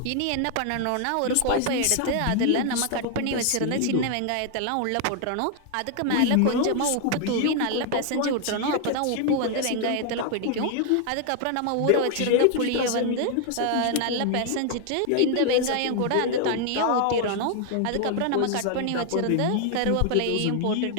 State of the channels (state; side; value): different; both; correlation 0.00